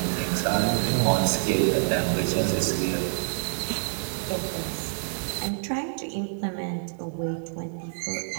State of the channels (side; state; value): left; silent; digital silence